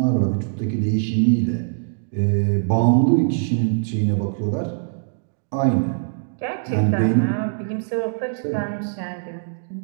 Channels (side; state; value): left; silent; digital silence